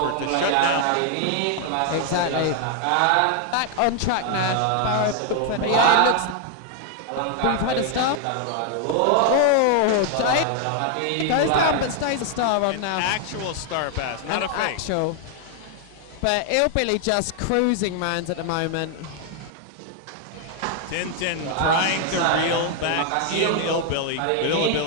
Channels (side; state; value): both; different; correlation 0.00